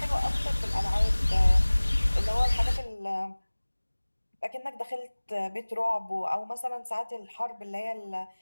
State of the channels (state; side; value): inverted; both; correlation -1.00